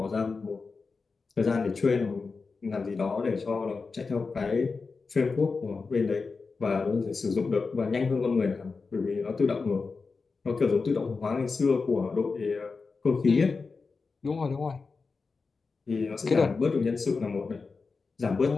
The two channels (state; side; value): quieter; right; 4.5 dB